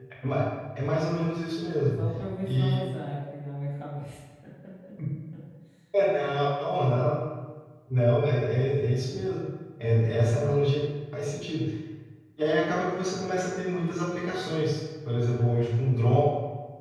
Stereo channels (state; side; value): identical; both; correlation 1.00